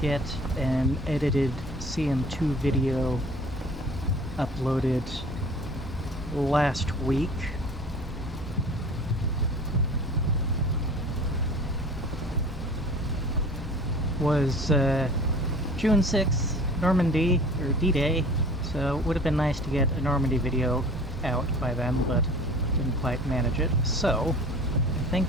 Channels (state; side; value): normal; both; correlation 0.44